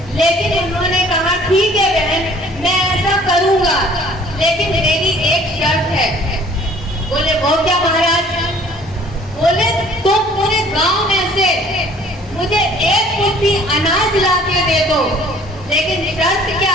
लेकिन उन्होंने कहा ठीक है बहन, मैं ऐसा करूंगा, लेकिन मेरी एक शर्त है। बोले वो क्या महाराज? बोले तुम पूरे गांव में से मुझे एक मुट्ठी अनाज ला के दे दो, लेकिन शर्त क्या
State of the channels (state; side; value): normal; both; correlation 0.54